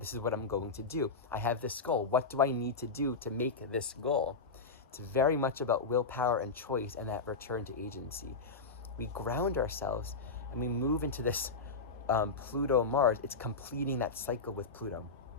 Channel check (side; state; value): right; quieter; 4.2 dB